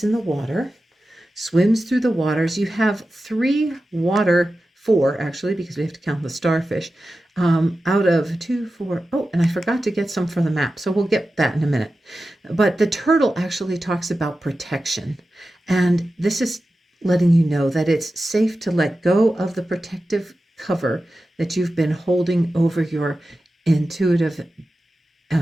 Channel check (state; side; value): normal; both; correlation 0.93